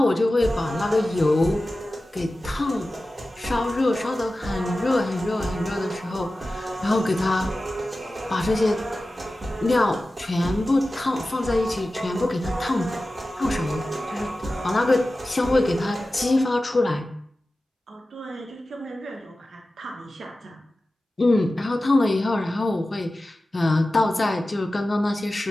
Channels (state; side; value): normal; both; correlation 0.95